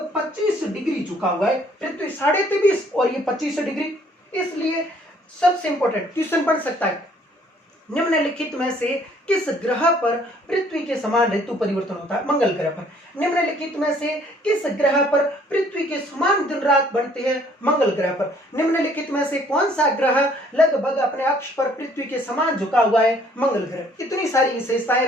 25 डिग्री झुका हुआ है। पृथ्वी 23.5 और ये 25 डिग्री। इसलिए सबसे इंपॉर्टेंट क्वेश्चन बन सकता है, निम्नलिखित में से किस ग्रह पर पृथ्वी के समान ऋतु परिवर्तन होता है? मंगल ग्रह पर। निम्नलिखित में से किस ग्रह पर पृथ्वी के समान दिन रात बनते हैं? मंगल ग्रह पर। निम्नलिखित में से कौन सा ग्रह लगभग अपने अक्ष पर पृथ्वी के समान झुका हुआ है? मंगल ग्रह। इतनी सारी विशेषताएं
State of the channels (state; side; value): normal; both; correlation 0.61